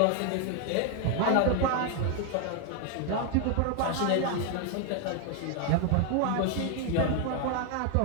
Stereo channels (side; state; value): both; different; correlation 0.01